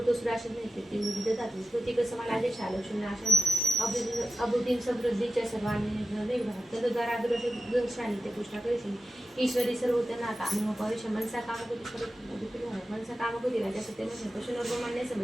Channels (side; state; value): both; normal; correlation 0.93